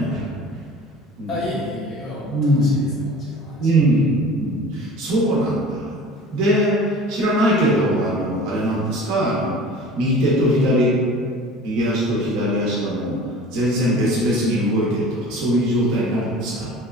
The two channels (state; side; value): normal; both; correlation 0.42